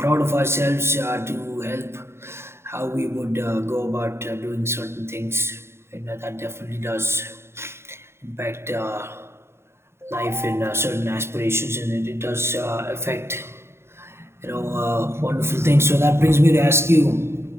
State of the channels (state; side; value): late; left; 0.12 ms